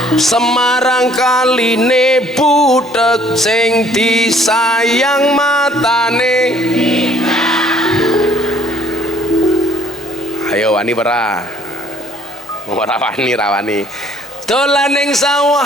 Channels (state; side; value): normal; both; correlation 0.60